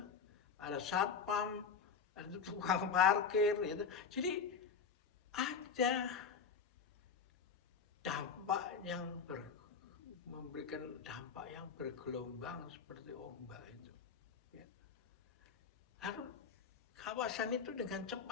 ada satpam, ada tukang parkir, gitu. Jadi ada dampak yang memberikan dampak yang bergelombang seperti ombak itu. Ya. Lalu kawasan itu dengan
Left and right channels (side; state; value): right; quieter; 6.0 dB